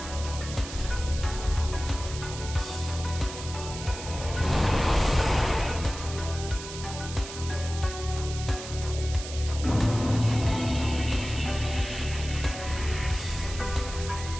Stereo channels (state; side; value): noise; right; hiss, 11 dB below the sound